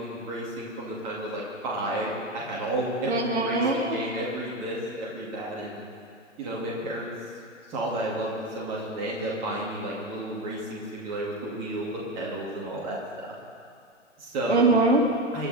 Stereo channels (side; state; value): both; normal; correlation 0.18